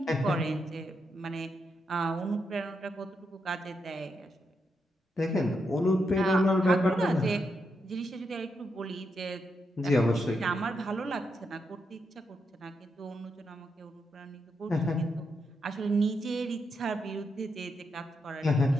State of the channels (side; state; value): both; normal; correlation 0.82